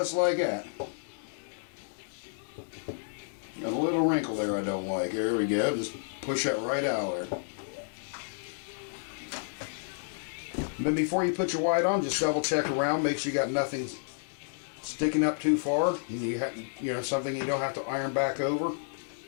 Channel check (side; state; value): right; silent; digital silence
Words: like that. Got a little wrinkle there I don't like. There we go. Just push that right out there. And then before you put your white on, just double check around. Make sure you got nothing sticking up too far. You know, something you don't have to iron back over.